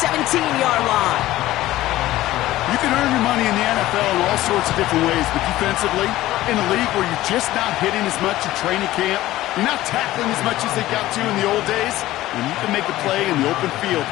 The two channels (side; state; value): right; quieter; 15.9 dB